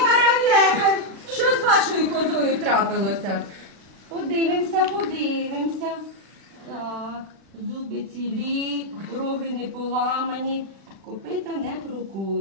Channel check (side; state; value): left; late; 36 ms